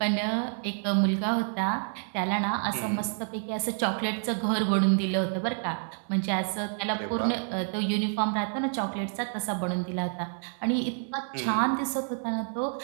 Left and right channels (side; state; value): left; silent; 59 dB below the other